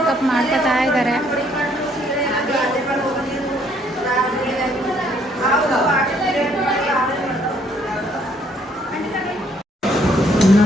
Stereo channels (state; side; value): normal; both; correlation 0.66